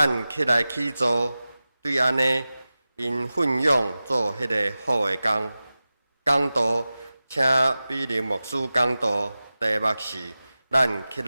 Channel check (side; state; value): both; inverted; correlation -0.96